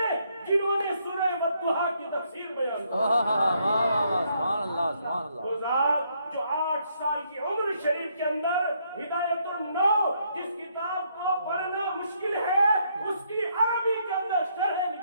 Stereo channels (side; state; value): both; inverted; correlation -0.73